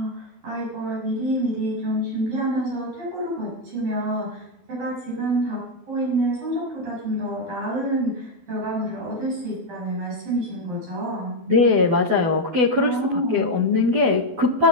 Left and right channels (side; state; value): left; late; 12 ms